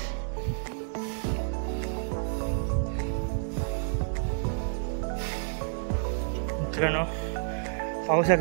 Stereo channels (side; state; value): left; silent; digital silence